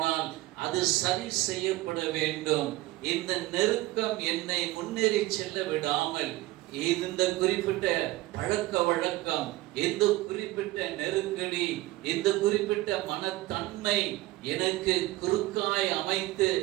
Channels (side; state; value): left; quieter; 18.2 dB